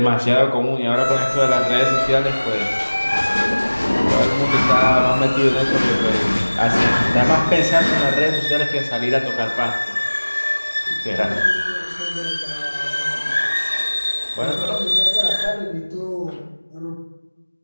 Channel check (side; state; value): both; inverted; correlation -1.00